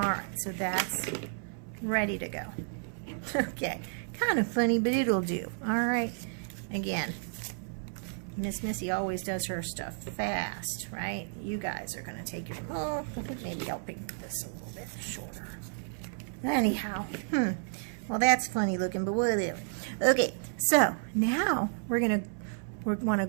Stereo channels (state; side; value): silent; left; 57 dB below the other